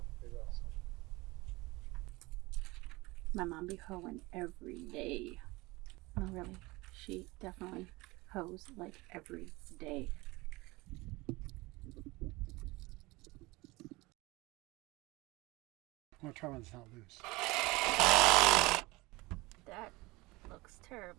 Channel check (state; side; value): quieter; left; 22.5 dB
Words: to figure out something. My mom be hoeing every day. No, really. She definitely hoes like every day. I'm gonna try when it's not loose. That looks